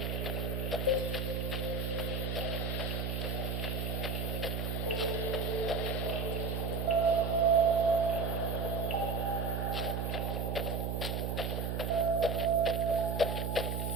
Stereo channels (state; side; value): noise; right; hum, 1 dB below the sound